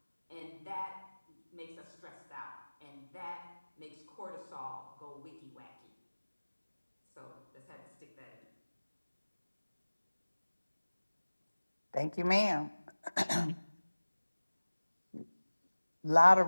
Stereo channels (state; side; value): inverted; both; correlation -1.00